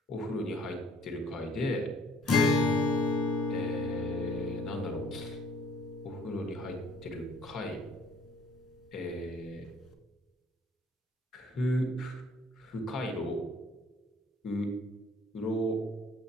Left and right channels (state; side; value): normal; both; correlation 0.58